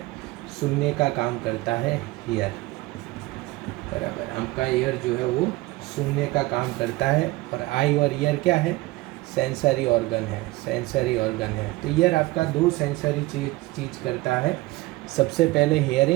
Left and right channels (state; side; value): quieter; left; 20.3 dB